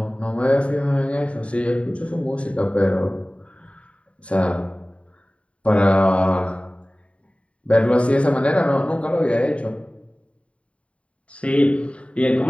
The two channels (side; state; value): right; late; 0.062 ms